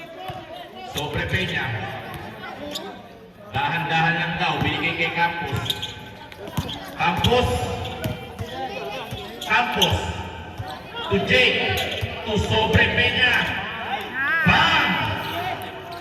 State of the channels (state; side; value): identical; both; correlation 1.00